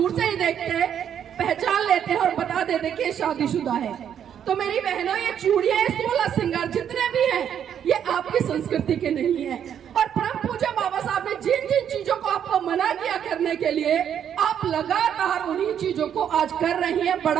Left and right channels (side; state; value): left; quieter; 9.0 dB